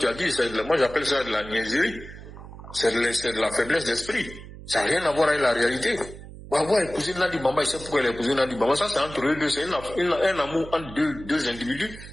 as dit. Moi j'appelle ça de la niaiserie. C'est de la faiblesse d'esprit. Ça n'a rien à voir avec la réalité. Gbagbo a épousé Nandi Bamba, il sait pourquoi il a épousé Nandi Bamba. Ça, c'est entre eux deux. C'est un amour entre deux individus.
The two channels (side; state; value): right; noise; hum, 15 dB below the sound